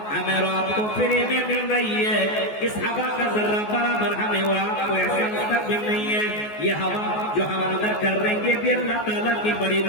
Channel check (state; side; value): late; right; 14 ms